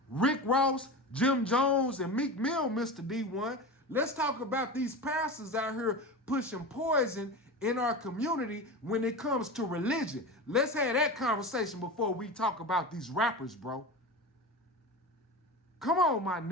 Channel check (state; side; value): normal; both; correlation 0.27